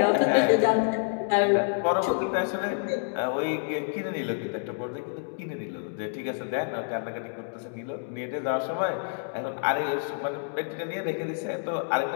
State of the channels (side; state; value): right; silent; digital silence